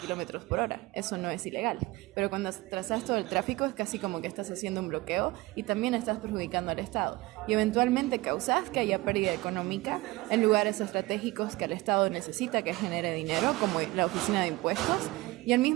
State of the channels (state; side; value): quieter; left; 20.9 dB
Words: por hora, eso no es ilegal, pero cuando atrasás todo el tráfico es casi como que estás haciendo un bloqueo y también estás perjudicando al Estado y eventualmente causás que haya pérdida económica en lugares estratégicos que el Estado necesita que genere dinero, como la oficina de impuestos. Y al